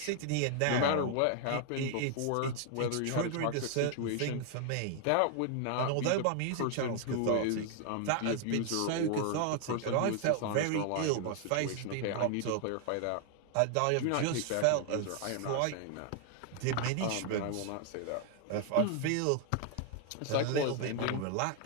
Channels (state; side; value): different; both; correlation 0.00